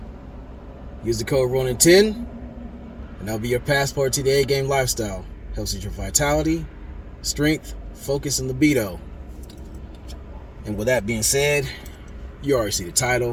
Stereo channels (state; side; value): identical; both; correlation 1.00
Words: Use the code Ronan10, and that'll be your passport to the A-game lifestyle. Helps with your vitality, strength, focus, and libido. And with that being said, you already see the